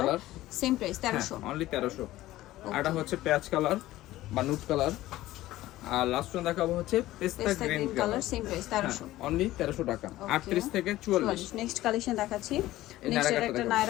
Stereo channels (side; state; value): right; quieter; 16.0 dB